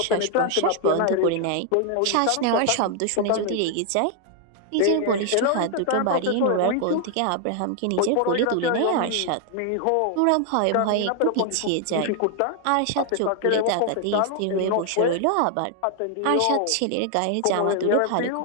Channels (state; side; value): different; both; correlation 0.00